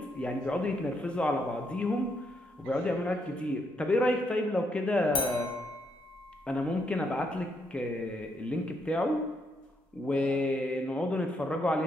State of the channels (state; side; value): normal; both; correlation 0.76